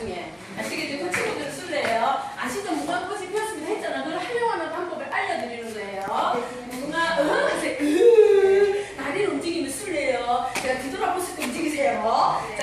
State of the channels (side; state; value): both; identical; correlation 1.00